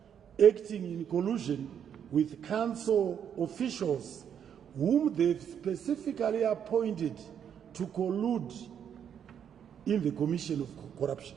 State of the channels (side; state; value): left; quieter; 8.5 dB